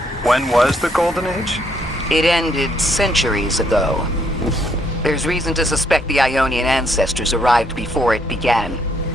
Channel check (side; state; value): both; normal; correlation 0.71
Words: When was the Golden Age? It ended centuries ago. There's reason to suspect the Ionian ancestors arrived before it began.